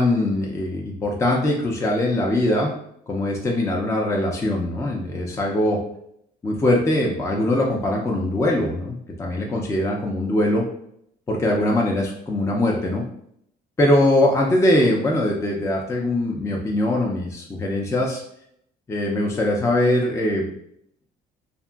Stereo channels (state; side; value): normal; both; correlation 0.67